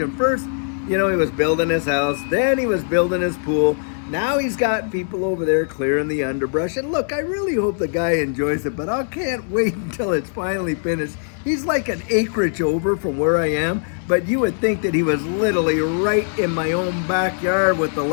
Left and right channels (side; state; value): right; silent; 65 dB below the other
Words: First, he was building his house, then he was building his pool. Now he's got people over there clearing the underbrush. And look, I really hope the guy enjoys it, but I can't wait until it's finally finished. He's like an acreage over from where I am, but you would think that he was literally right in my own backyard with the